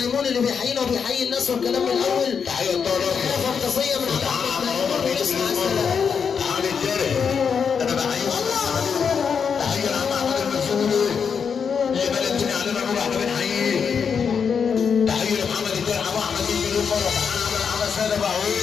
اللي بيحيينا وبيحيي الناس والكلام من الاول. تحيه الطالب تحيه فانتازيه من عم احمد ميمون ونسمع السلام. علي الدرع انا بحييك. تحيه لعم احمد المسؤول اللي بلدتني علينا نور احنا بنحييه. تحيه لمحمد الدرع ابو احمد 100 مليون مره. تعالى عمل ساده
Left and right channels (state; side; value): quieter; right; 6.5 dB